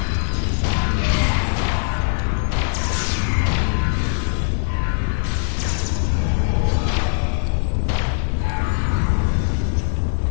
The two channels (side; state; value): right; silent; digital silence